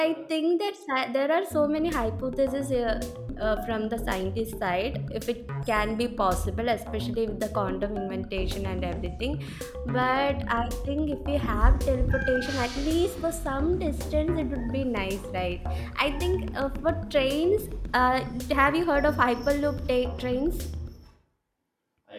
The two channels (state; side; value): identical; both; correlation 1.00